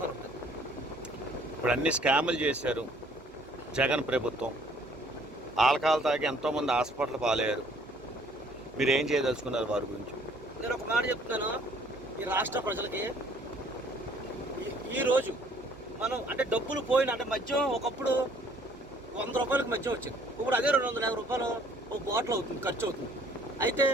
ఉంటాయి. ఇప్పుడు అన్ని స్కాములు చేశారు జగన్ ప్రభుత్వం. ఆల్కహాల్ తాగి ఎంతోమంది హాస్పిటల్ పాలయ్యారు. మీరు ఏం చేయదలుచుకున్నారు వారి గురించి? నేను ఒక మాట చెప్తున్నాను. ఈ రాష్ట్ర ప్రజలకి ఈరోజు మనం అంటే డబ్బులు పోయిన అంటే మద్యం ఒకప్పుడు 100 రూపాయలకు మద్యం వచ్చింది. ఇప్పుడు అదే 250 రూపాయలు ఒక బాటిల్ అవుతుంది, ఖర్చు అవుతుంది. అయితే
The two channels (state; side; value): normal; both; correlation 0.59